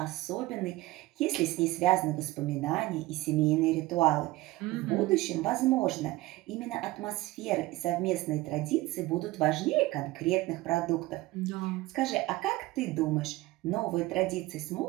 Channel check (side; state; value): left; quieter; 18.8 dB